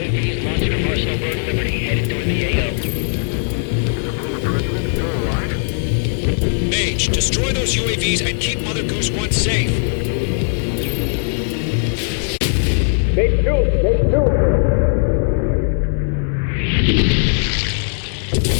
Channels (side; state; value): right; silent; digital silence